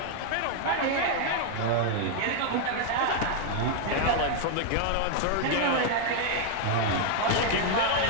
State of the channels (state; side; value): different; both; correlation 0.00